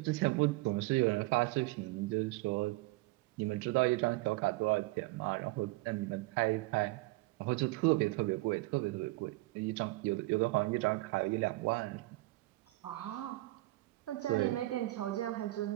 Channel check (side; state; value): left; quieter; 20.6 dB